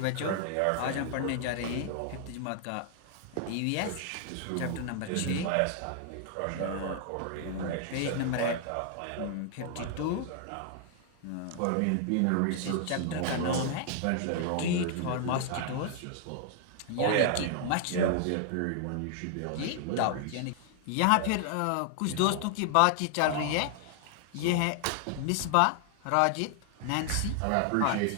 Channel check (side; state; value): both; different; correlation 0.00